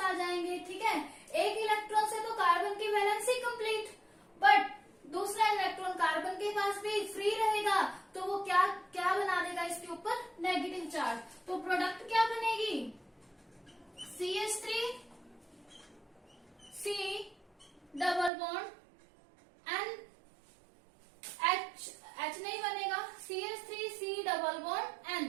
जाएंगे। ठीक है, एक इलेक्ट्रॉन से तो कार्बन की वैलेंसी कंप्लीट, बट दूसरा इलेक्ट्रॉन कार्बन के पास भी फ्री रहेगा, तो वो क्या क्या बना देगा इसके ऊपर, नेगेटिव चार्ज। तो प्रोडक्ट क्या बनेगी, CH3 C double bond N, H नहीं बनेगा, CH3 C double bond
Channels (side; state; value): left; drops out; at 18.3 s